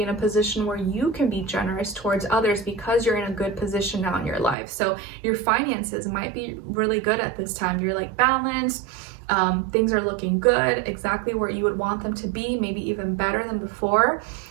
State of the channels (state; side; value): drops out; left; at 4.5 s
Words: in a position where you can be generous towards others because you're in a good position now in your life. So your finances might be really good at this time. You're like balanced. Things are looking good, exactly where you would want them to be, maybe even better than before.